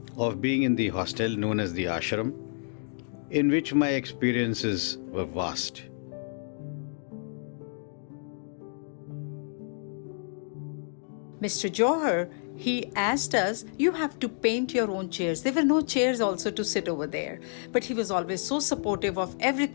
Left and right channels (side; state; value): right; silent; digital silence